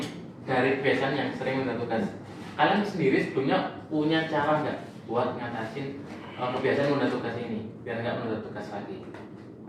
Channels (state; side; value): identical; both; correlation 1.00